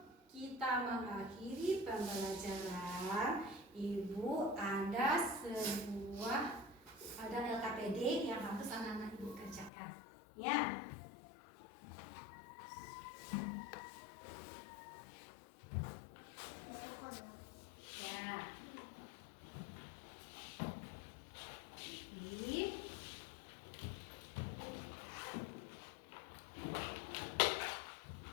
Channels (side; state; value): right; drops out; at 9.7 s